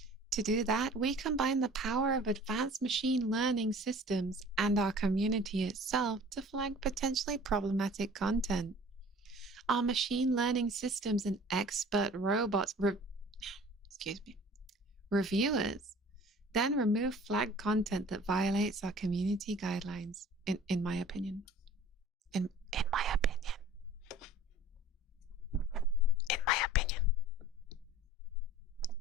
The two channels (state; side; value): normal; both; correlation 0.47